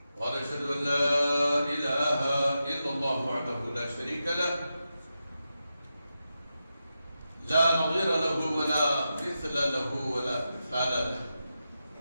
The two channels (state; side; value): inverted; both; correlation -0.89